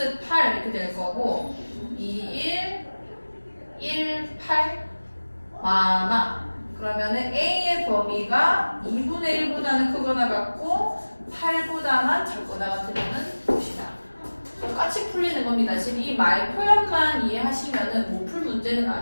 8 이렇게 될 거고 2, 1, 8 많아. 그러면은 a의 범위가 2분의 1보다는 크거나 같고 8보다만 작거나 같으면 것이다. 똑같이 풀리는 겁니다. 지금 이 말 표현만 이해하시면은 못 풀 문제는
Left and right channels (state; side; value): inverted; both; correlation -1.00